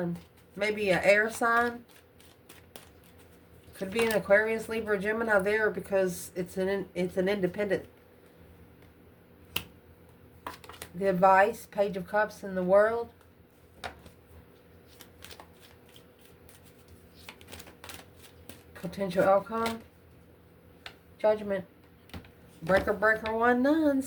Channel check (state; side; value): identical; both; correlation 1.00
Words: Maybe an air sign. Could be an Aquarius, Libra, Gemini there because it's an independent. The advice, Page of Cups in the world. Potential outcome. Judgment. Breaker, breaker, 1, none.